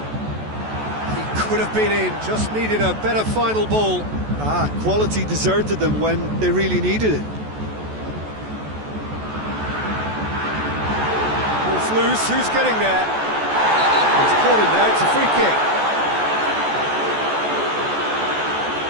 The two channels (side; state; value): left; late; 14 ms